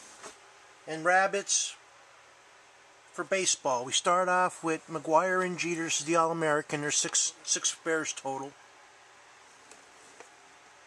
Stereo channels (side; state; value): both; identical; correlation 1.00